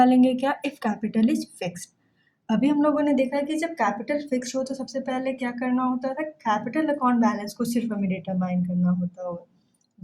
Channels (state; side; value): identical; both; correlation 1.00